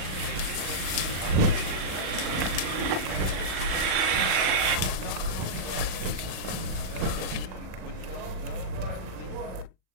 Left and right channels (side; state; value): left; late; 36 ms